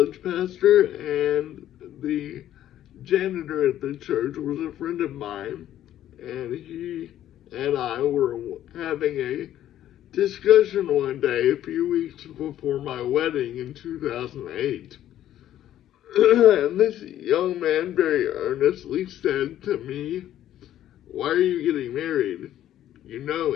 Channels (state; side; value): quieter; right; 12.1 dB